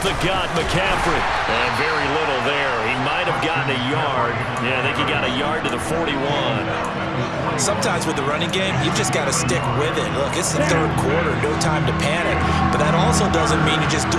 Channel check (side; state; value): both; identical; correlation 1.00